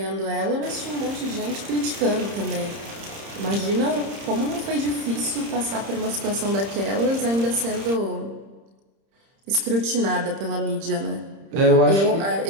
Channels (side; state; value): left; late; 30 ms